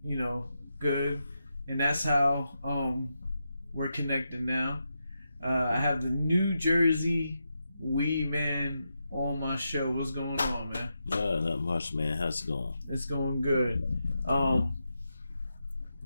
good. And that's how we're connected now. I have the New Jersey Weedman on my show. What's going on, man? Not much, man. How's it going? It's going good.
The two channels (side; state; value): both; inverted; correlation -0.86